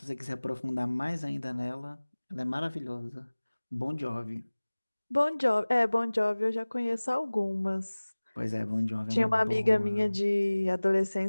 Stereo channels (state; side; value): inverted; both; correlation -1.00